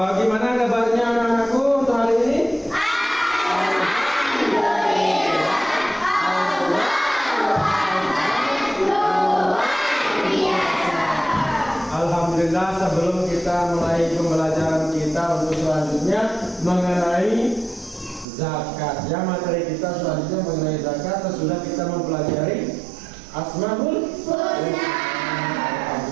gimana kabarnya anak-anakku untuk hari ini? Alhamdulillah, sebelum kita mulai pembelajaran kita untuk selanjutnya mengenai zakat, ya, materi kita selanjutnya mengenai zakat, sudah kita mempelajari Asmaul Husna.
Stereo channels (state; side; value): drops out; left; at 18.2 s